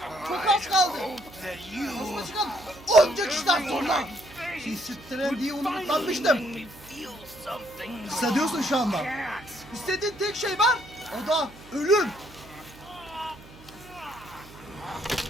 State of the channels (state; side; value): noise; right; hum, 21 dB below the sound